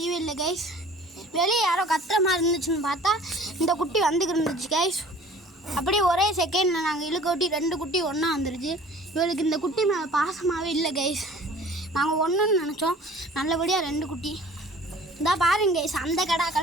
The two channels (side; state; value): both; normal; correlation 0.48